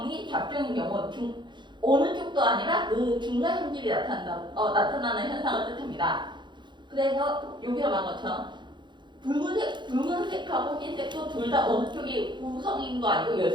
잡종인 경우 어느 쪽도 아니라 그 중간 형질이 나타나는 현상을 뜻합니다. 그래서 여기서 말한 것처럼 붉은색하고 흰색도 둘 다 어느 쪽이 우성인도 아니고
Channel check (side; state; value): left; late; 0.22 ms